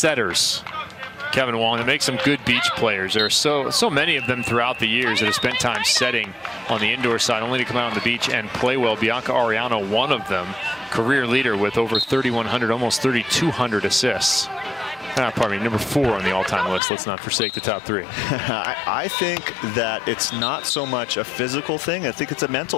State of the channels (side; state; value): right; drops out; at 16.8 s